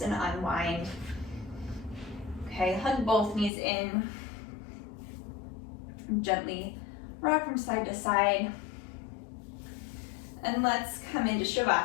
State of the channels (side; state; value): right; drops out; at 3.5 s